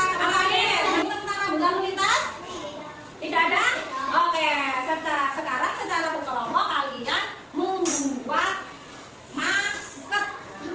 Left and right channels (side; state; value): both; identical; correlation 1.00